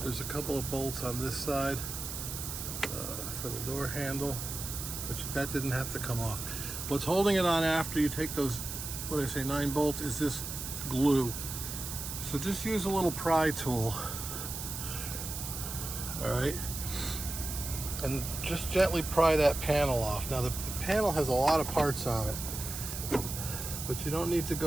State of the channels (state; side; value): noise; right; hiss, 6 dB below the sound